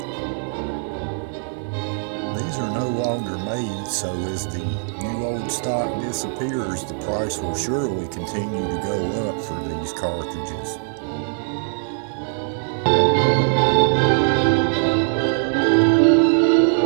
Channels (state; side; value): silent; left; 63 dB below the other